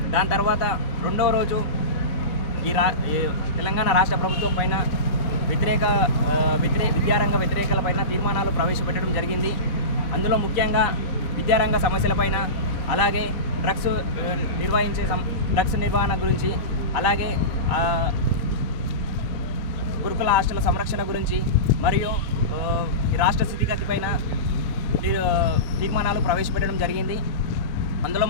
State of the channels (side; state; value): right; late; 3.8 ms